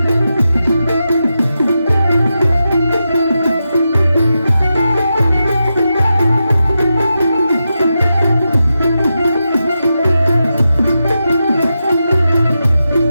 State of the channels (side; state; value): both; inverted; correlation -0.89